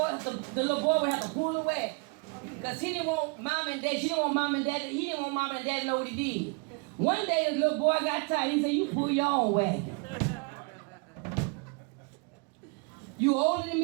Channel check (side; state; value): left; quieter; 33.5 dB